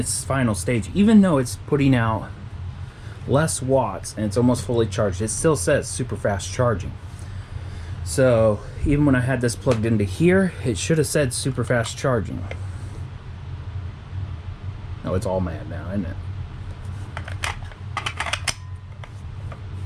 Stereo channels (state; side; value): identical; both; correlation 1.00